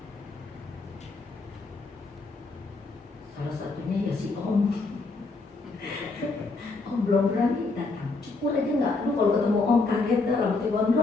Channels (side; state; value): right; quieter; 3.7 dB